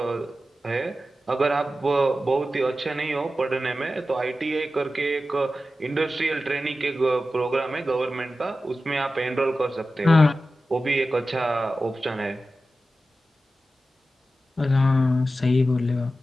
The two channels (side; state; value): both; normal; correlation 0.93